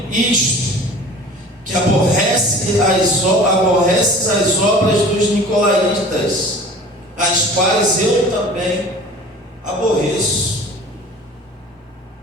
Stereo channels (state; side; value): normal; both; correlation 0.43